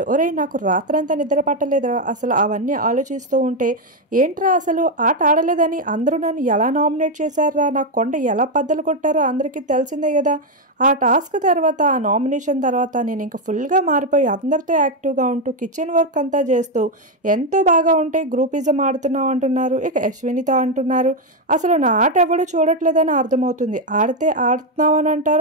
ఒరే నాకు రాత్రంతా నిద్ర పట్టలేదురా, అసలు అవన్నీ ఆలోచిస్తూ ఉంటే ఏంట్రా అసలు ఆట ఆడలేదని అందరూ నన్ను ఎలా నామినేట్ చేశారా, నా కొండ ఎలా బద్దలు కొట్టారో అందరికీ తెలిసిందే కదా. ఆ టాస్క్ తర్వాత ఆ నామినేషన్ తర్వాత నేను ఇంకా ఫుల్గా మారిపోయి అందరితో యాక్టివ్గా ఉంటూ కిచెన్ వర్క్ అంతా చేస్తూ ఎంతో బాగా ఉంటే గ్రూపిజం ఆడుతున్నావు అంటున్నారు. ఇక అశ్వినితో అంటున్నారు అసలు నా ఆట ఎవడో చూడట్లేదని అర్థమవుతుంది. ఆడితే ఆడుతున్నామని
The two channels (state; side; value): normal; both; correlation 0.04